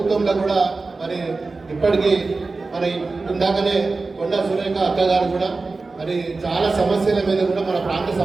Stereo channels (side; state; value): left; quieter; 3.8 dB